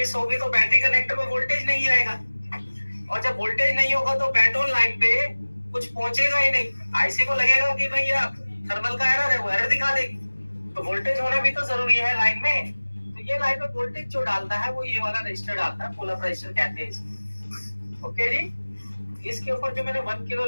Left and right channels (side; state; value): both; inverted; correlation -1.00